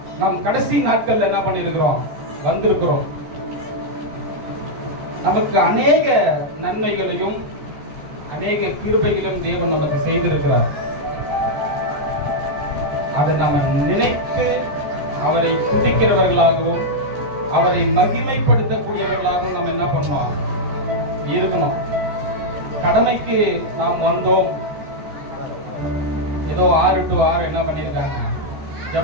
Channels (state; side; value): late; left; 14 ms